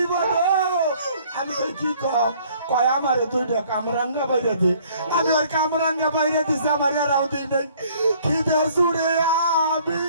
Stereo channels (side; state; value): both; inverted; correlation -0.58